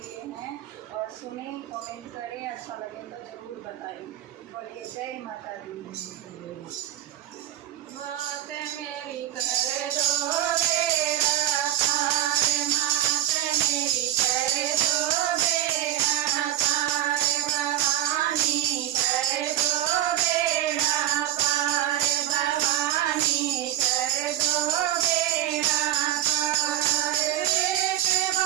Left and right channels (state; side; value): quieter; left; 12.5 dB